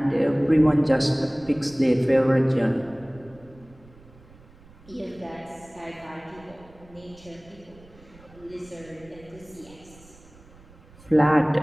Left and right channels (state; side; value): noise; right; rumble, 24 dB below the sound